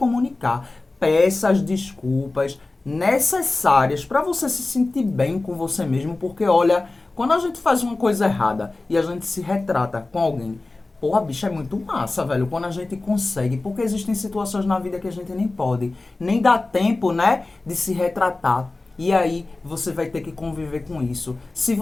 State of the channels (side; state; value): right; quieter; 3.2 dB